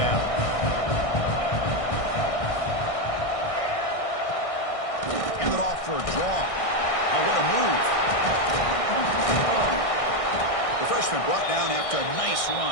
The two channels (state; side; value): late; right; 1.6 ms